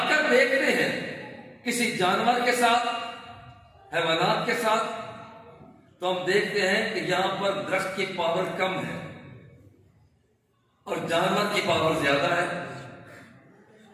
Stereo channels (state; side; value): identical; both; correlation 1.00